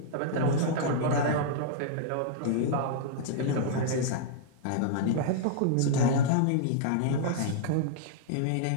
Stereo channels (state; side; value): different; both; correlation -0.01